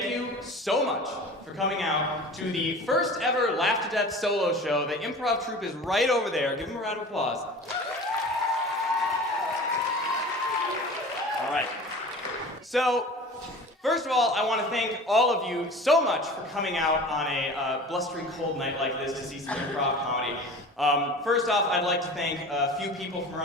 you so much for coming out to the first ever Laugh2Death solo show. The Improv Troupe is right over there. Give them a round of applause. All right. So, first of all, I want to thank all of you so much for coming out on a blustery cold night like this to see some improv comedy. First off, I'd like to thank a few people from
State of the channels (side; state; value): both; normal; correlation 0.39